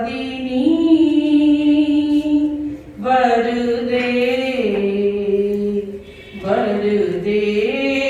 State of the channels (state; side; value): identical; both; correlation 1.00